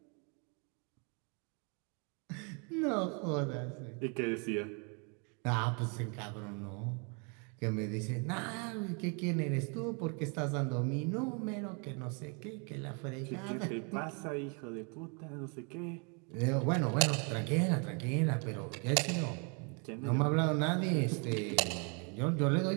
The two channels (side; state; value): left; quieter; 35.6 dB